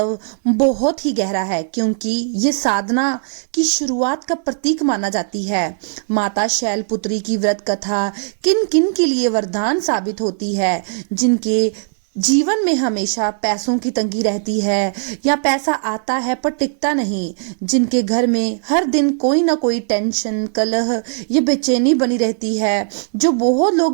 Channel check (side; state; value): left; silent; digital silence